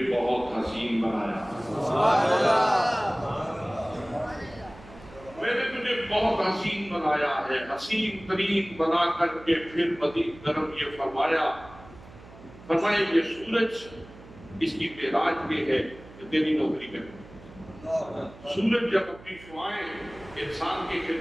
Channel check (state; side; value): noise; right; hum, 20 dB below the sound